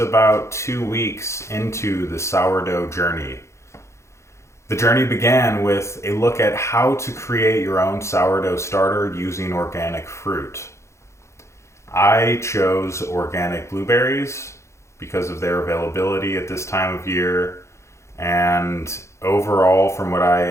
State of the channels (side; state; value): right; late; 0.14 ms